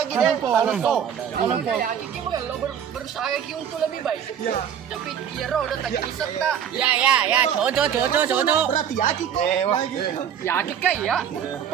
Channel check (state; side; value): quieter; left; 8.8 dB